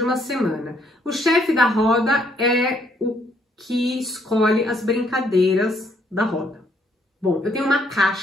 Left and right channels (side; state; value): both; normal; correlation 0.69